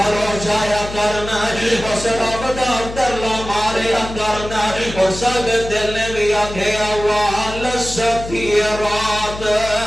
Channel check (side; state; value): left; noise; hum, 11 dB below the sound